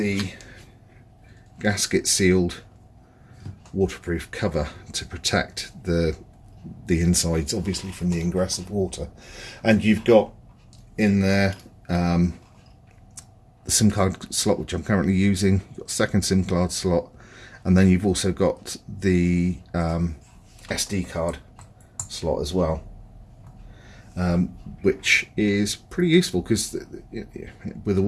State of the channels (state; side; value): identical; both; correlation 1.00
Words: gasket sealed waterproof cover to protect the insides, obviously, from the ingress of water. And you've got in there the SIM card slot, which I'm currently using. You've got a second SIM card slot, and then you've also got the SD card slot as well, which is pretty useful, because with